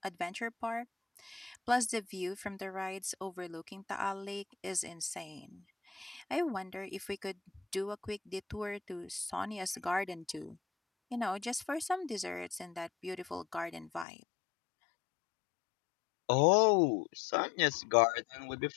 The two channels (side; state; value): right; drops out; at 14.1 s